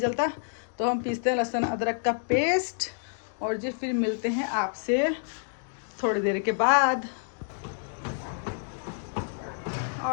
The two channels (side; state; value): right; silent; digital silence